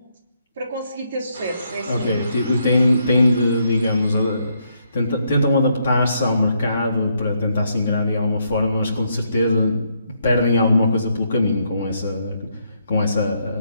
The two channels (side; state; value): both; inverted; correlation -0.76